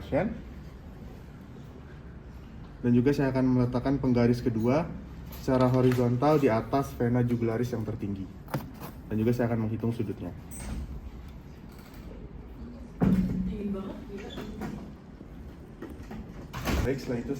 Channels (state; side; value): identical; both; correlation 1.00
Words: Dan juga saya akan meletakkan penggaris kedua secara horizontal di atas vena jugularis yang tertinggi. Dan juga saya akan menghitung sudutnya. Baik, setelah itu